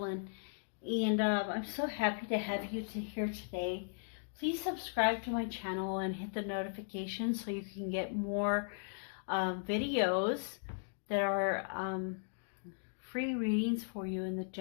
and I'm so happy to have you here today. Please subscribe to my channel and hit the notification so you can get more videos that are free readings for you in the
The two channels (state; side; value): silent; right; digital silence